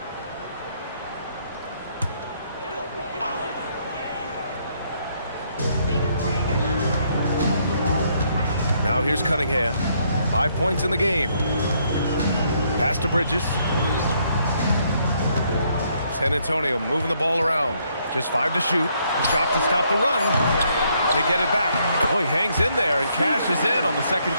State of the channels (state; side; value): inverted; both; correlation -0.71